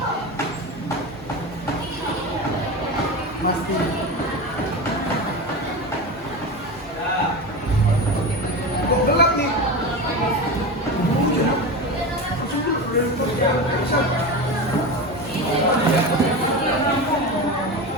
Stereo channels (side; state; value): both; normal; correlation 0.24